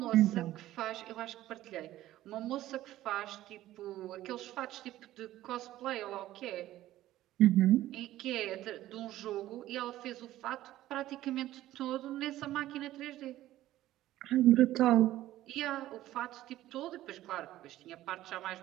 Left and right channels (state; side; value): quieter; left; 14.6 dB